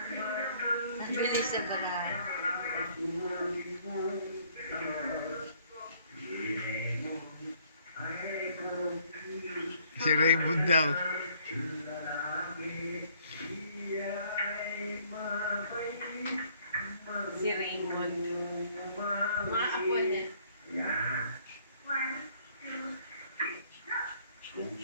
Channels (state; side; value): inverted; both; correlation -0.63